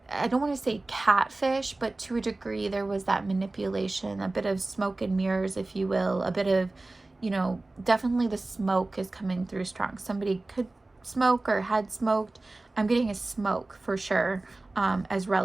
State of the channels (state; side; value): quieter; left; 3.0 dB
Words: I don't want to say catfish, but to a degree there was that manipulation, a bit of smoke and mirrors, if you will, a bit of, definitely the smoke is coming through strong. Somebody could smoke or had smoked. I'm getting a smoke for sure, as